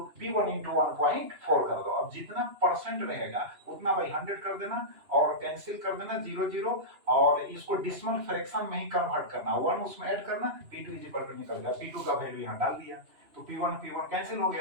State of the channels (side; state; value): left; late; 2.9 ms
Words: P1 into 1.4 कर दो। अब जितना परसेंट रहेगा उतना बाई 100 कर देना और कैंसिल कर देना 0 0, और इसको डिसिमल फ्रैक्शन में ही कन्वर्ट करना, 1 उसमें ऐड करना, P2 इज इक्वल टू निकल गया, P2 का वैल्यू यहाँ डाल दिया, तो P1 कैंसिल हो